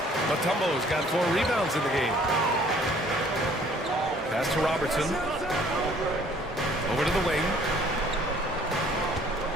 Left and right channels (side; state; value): both; normal; correlation 0.57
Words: Mutombo's got 4 rebounds in the game. Pass to Robertson. Over to the wing.